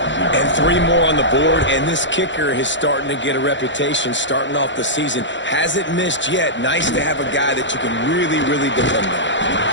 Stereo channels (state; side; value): late; right; 0.54 ms